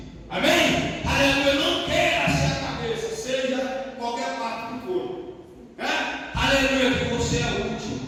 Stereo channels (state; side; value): identical; both; correlation 1.00